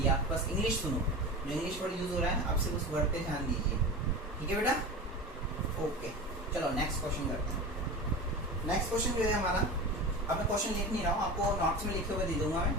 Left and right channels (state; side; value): normal; both; correlation 0.30